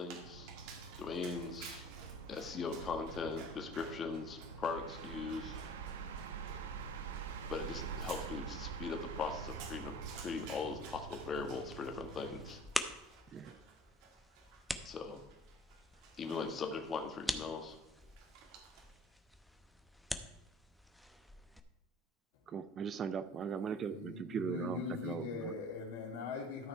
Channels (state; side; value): normal; both; correlation 0.47